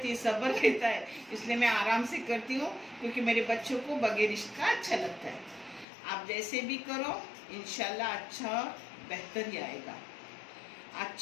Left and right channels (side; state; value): right; drops out; at 5.9 s